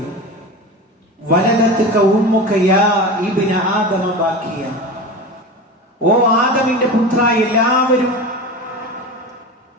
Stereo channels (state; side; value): normal; both; correlation 0.28